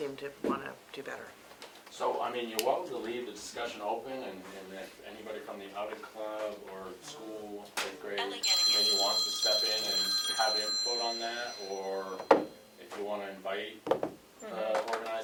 to want to do better. So, you're welcome to leave the discussion open, and if anybody from the outing club or school, 8th grade committee wants to step in and have input on that, or if you want to invite the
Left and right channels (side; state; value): both; identical; correlation 1.00